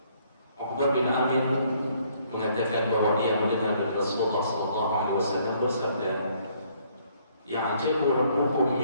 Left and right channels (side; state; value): both; inverted; correlation -0.65